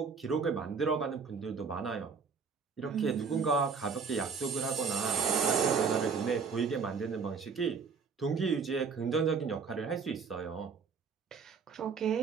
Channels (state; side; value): quieter; left; 5.5 dB